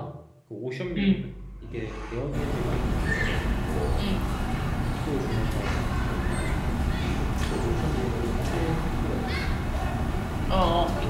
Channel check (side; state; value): both; identical; correlation 1.00